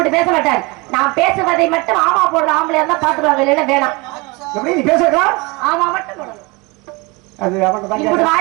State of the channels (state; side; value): quieter; left; 26.1 dB